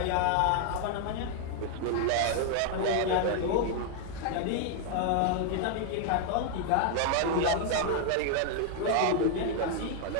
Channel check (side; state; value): both; different; correlation 0.00